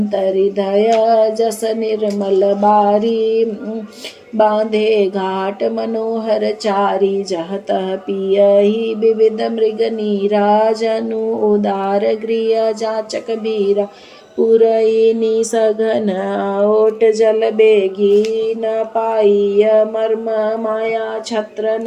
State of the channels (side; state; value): both; identical; correlation 1.00